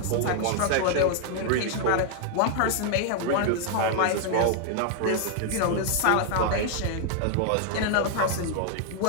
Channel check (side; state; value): both; different; correlation 0.00